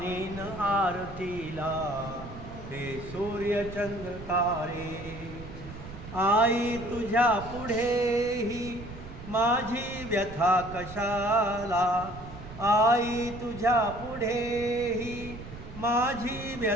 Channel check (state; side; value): noise; right; rumble, 13 dB below the sound